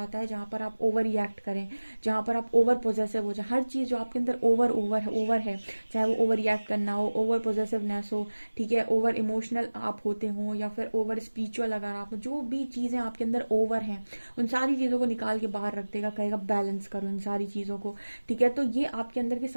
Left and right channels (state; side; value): inverted; both; correlation -1.00